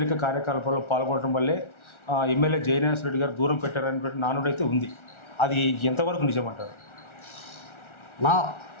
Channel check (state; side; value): late; right; 1.4 ms